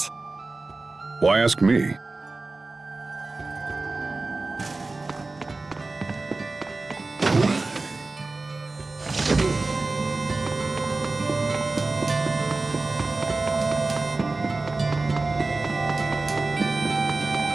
Why ask me?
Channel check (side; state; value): left; quieter; 3.4 dB